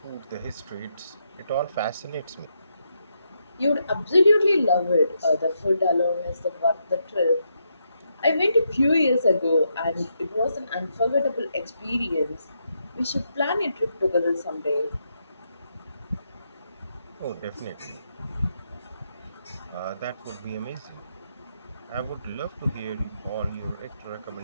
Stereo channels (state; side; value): inverted; both; correlation -0.80